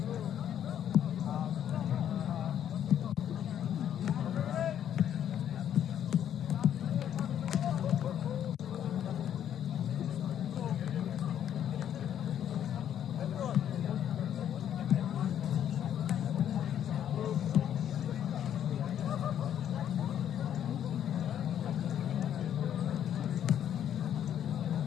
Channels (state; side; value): quieter; right; 10.0 dB